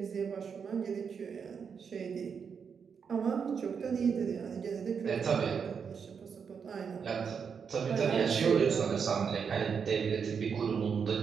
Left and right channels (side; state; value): left; quieter; 6.5 dB